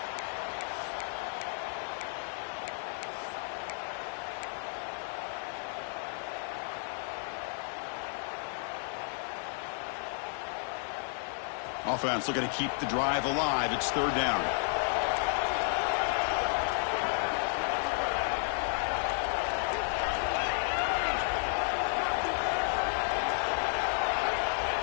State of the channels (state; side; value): silent; right; 56 dB below the other